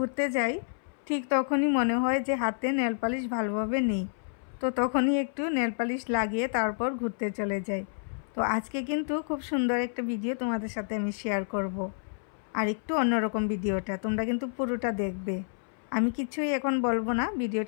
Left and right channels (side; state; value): right; silent; 58 dB below the other